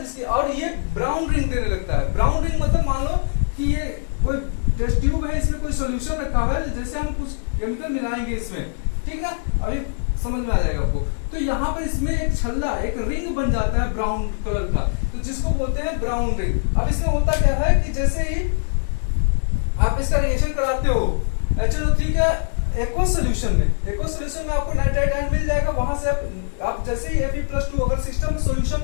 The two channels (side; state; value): right; silent; digital silence